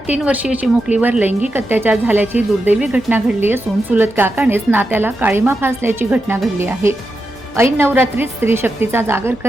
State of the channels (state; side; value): normal; both; correlation 0.88